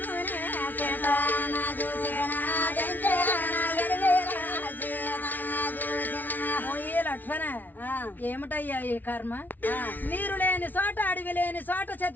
చేతాన చూసేన దించేన ఎడవేల చేతాన చూసేన. ఓయే లక్ష్మణ, ఏమిటయ్యా ఈ కర్మ? నీరు లేని చోట, అడవి లేని చోట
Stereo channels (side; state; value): right; late; 0.084 ms